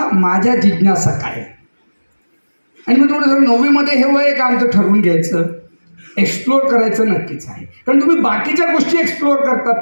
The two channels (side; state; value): both; inverted; correlation -1.00